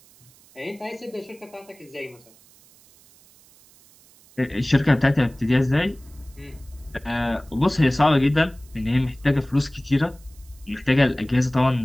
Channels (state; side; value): noise; right; hiss, 27 dB below the sound